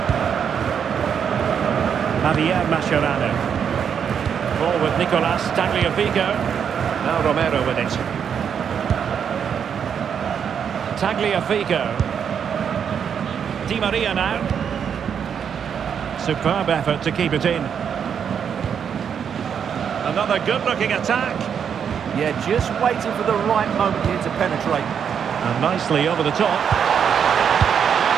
Javier Mascherano. Ball with Nicolas Tagliafico. Now Romero with it. Tagliafico. Di Maria now. Superb effort to keep it in. Another good-looking attack. Yeah, just waiting for the right moment here to penetrate. And nicely over the top.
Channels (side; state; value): left; quieter; 7.6 dB